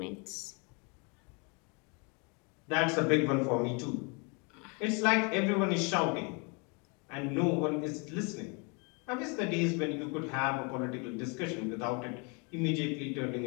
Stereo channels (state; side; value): quieter; right; 33.0 dB